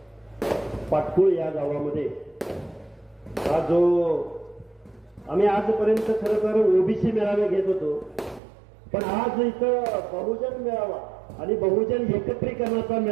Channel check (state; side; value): drops out; left; at 8.4 s